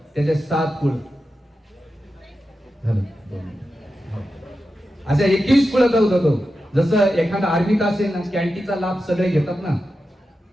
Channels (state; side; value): normal; both; correlation 0.91